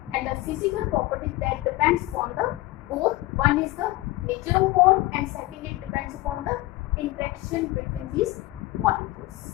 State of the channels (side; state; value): right; quieter; 19.0 dB